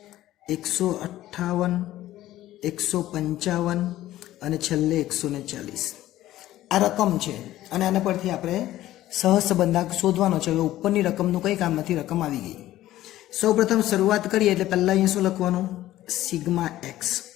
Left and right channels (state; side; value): quieter; right; 14.6 dB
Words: 158 155 અને છેલ્લે 140. આ રકમ છે અને આના પરથી આપણે સહસંબંધાંક શોધવાનો છે. હવે ઉપરની રકમનું કંઈ કામ નથી, રકમ આવી ગઈ. સૌપ્રથમ શરૂઆત કરીએ એટલે પહેલાં અહીંયા શું લખવાનું, સિગ્મા x